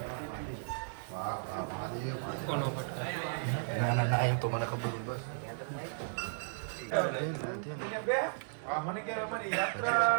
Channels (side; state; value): left; silent; digital silence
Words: વાહ વાહ મહાદેવ. કોનો પટકા? ના એમ તો મને ખબર. બસ